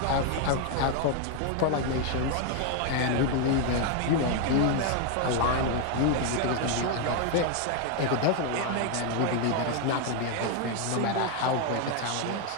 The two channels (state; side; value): different; both; correlation 0.01